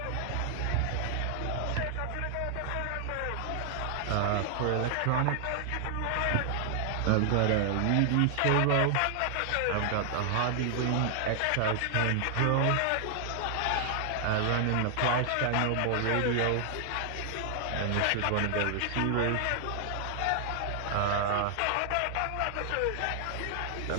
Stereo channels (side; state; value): both; different; correlation 0.00